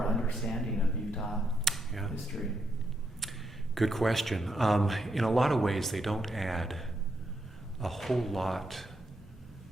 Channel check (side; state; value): both; normal; correlation 0.80